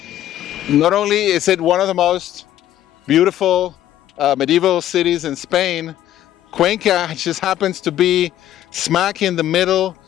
Not only is it one of the most beautiful medieval cities in Spain, Cuenca just happens to be smack in the middle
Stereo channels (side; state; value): right; quieter; 12.5 dB